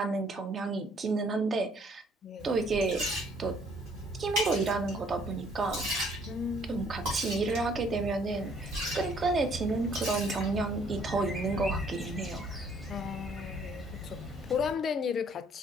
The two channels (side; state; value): both; normal; correlation 0.62